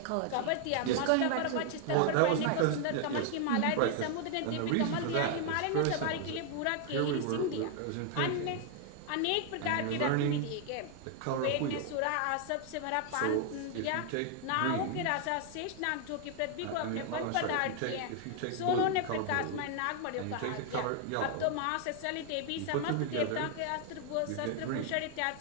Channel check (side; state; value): both; different; correlation 0.00